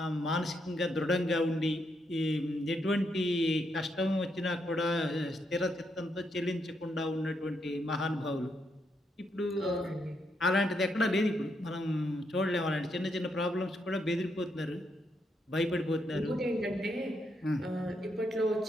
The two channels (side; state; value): both; normal; correlation 0.79